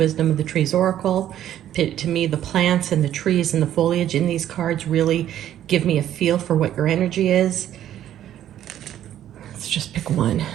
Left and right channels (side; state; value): left; quieter; 11.5 dB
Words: of the Trees Oracle. To me, the plants and the trees and the foliage in these cards really give me a feel for what your energy is. Let's just pick one.